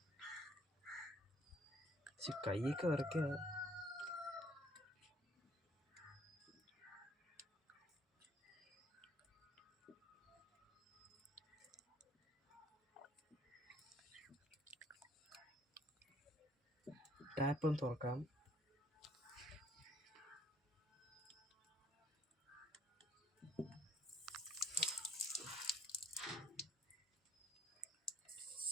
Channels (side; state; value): both; normal; correlation 0.61